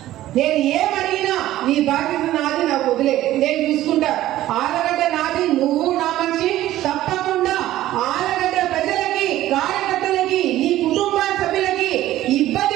నేను ఏమడిగినా నీ బాధ్యత నాది, నాకు వదిలే, నేను చూసుకుంటా. ఆలగడ్డ నాది, నువ్వు నా మనిషి, తప్పకుండా ఆలగడ్డ ప్రజలకి, కార్యకర్తలకి, నీ కుటుంబ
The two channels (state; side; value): quieter; left; 14.4 dB